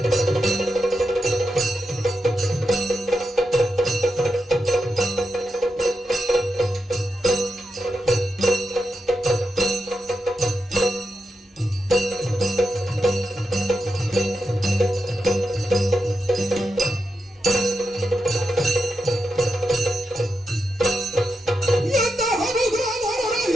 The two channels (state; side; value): normal; both; correlation 0.87